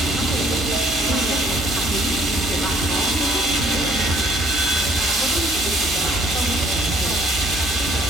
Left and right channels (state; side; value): normal; both; correlation 0.62